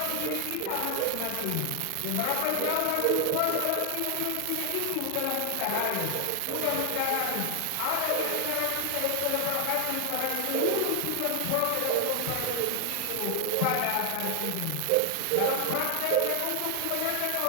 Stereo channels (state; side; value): different; both; correlation 0.00